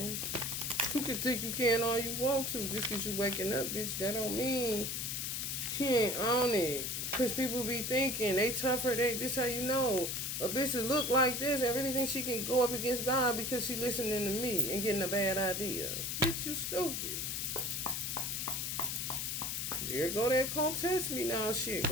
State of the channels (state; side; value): noise; left; hiss, 2 dB below the sound